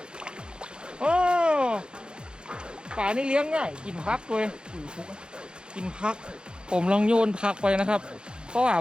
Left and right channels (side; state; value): left; late; 0.050 ms